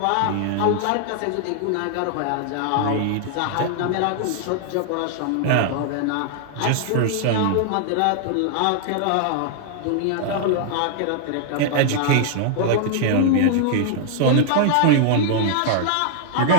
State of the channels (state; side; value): different; both; correlation 0.00